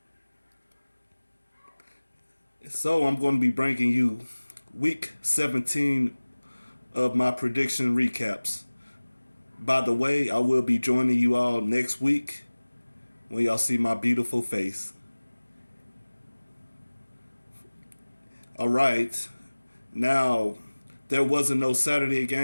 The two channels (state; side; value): inverted; both; correlation -1.00